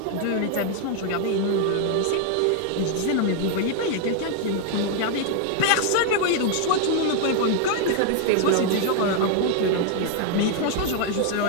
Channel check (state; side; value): different; both; correlation 0.00